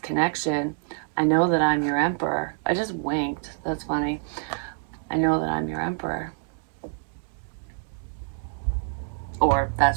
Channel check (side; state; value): left; silent; digital silence